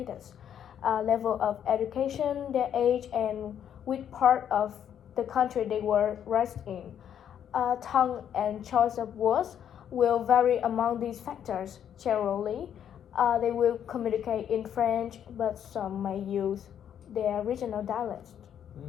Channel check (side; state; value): right; quieter; 9.3 dB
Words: level of education, their age, and which part of the country they were raised in. Tongue and choice of words will vary among these factors. Generally, they will communicate in French, but some may use their regional dialects.